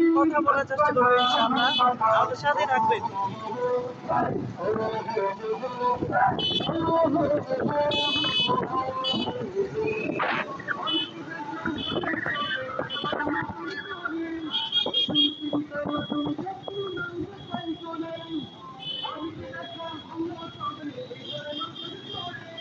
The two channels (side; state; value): both; identical; correlation 1.00